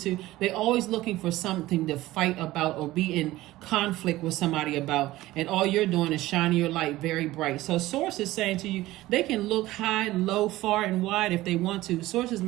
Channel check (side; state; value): left; quieter; 17.1 dB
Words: They're always looking for something to fight about or be in conflict with somebody about. And all you're doing is shining your light very bright. So Source is saying to you, they can look high, low, far, and wide if they want to. Source is